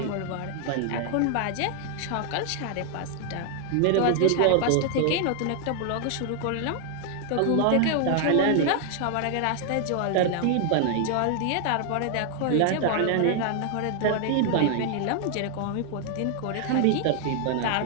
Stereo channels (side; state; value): both; different; correlation 0.00